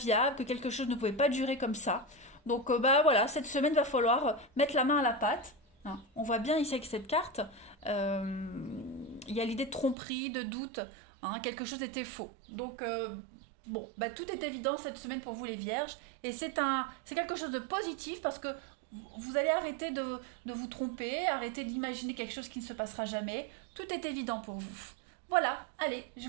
que quelque chose ne pouvait pas durer comme ça. Donc voilà, cette semaine va falloir mettre la main à la pâte. Hein. On voit bien ici avec cette carte, il y a l'idée de tromperie, de doute. Hein, quelque chose était faux. Donc bon, tout est évident cette semaine pour vous les vierges et c'est quelque chose de positif parce que vous allez arrêter de vous tromper, arrêter d'imaginer quelque chose qui ne se passera jamais. Tout est évident pour vous. Voilà, allez, je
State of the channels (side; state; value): left; drops out; at 10.0 s